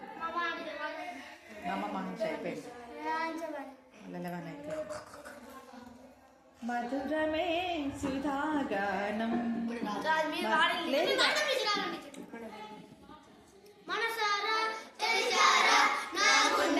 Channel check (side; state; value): both; identical; correlation 1.00